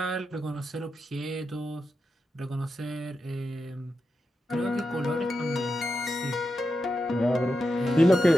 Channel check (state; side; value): normal; both; correlation 0.88